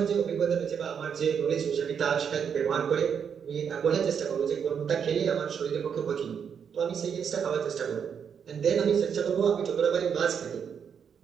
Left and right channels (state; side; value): quieter; left; 7.3 dB